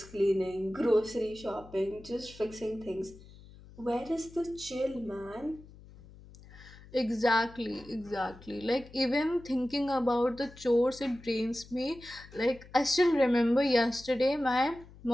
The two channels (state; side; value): noise; left; hum, 21 dB below the sound